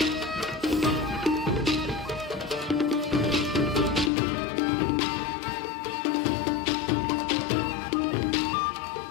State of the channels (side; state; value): right; drops out; at 4.1 s